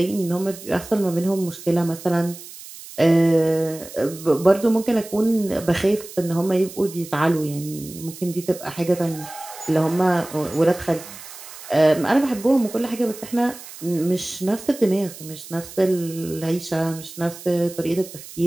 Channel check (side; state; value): right; noise; hiss, 15 dB below the sound